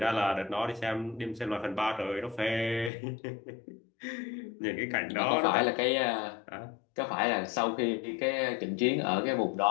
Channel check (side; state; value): right; drops out; at 2.9 s